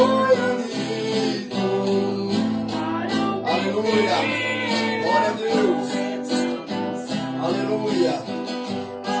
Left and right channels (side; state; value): both; identical; correlation 1.00